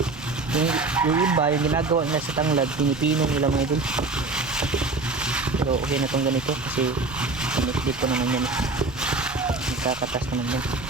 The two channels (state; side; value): quieter; left; 3.5 dB